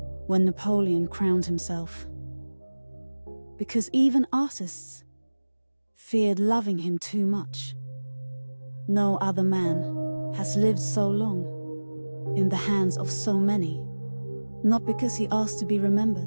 when Napoleon crowned himself. Because even artists feared loving him too much. No other man has lived so long in the hands of so many, not because he asked to be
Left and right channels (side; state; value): both; inverted; correlation -1.00